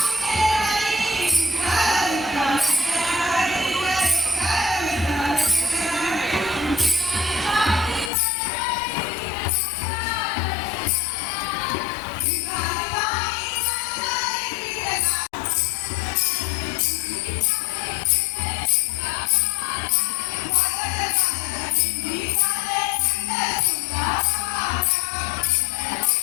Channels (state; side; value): drops out; right; at 8.1 s